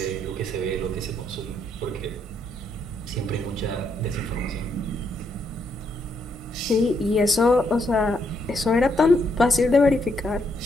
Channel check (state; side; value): normal; both; correlation 0.75